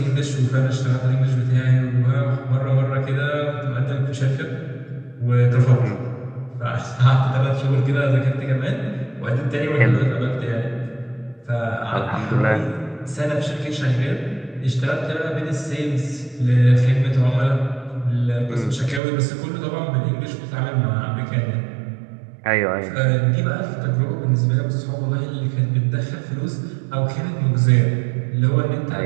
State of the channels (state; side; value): drops out; left; at 19.0 s